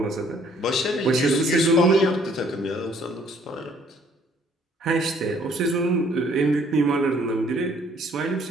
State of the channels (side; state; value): both; normal; correlation 0.61